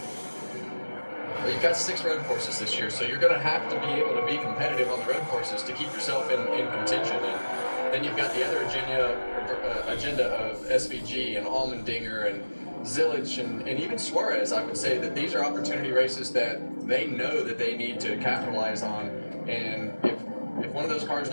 Well, you've got 6 road courses this year, so you're going to have to be able to be competitive on the road courses to keep yourself in contention. And then you've got the other agenda of SVG and Allmendinger and Zillich and even Suarez. I would say that these are opportunity races that they know that they need to capitalize on. And if one of those cars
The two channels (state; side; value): inverted; both; correlation -1.00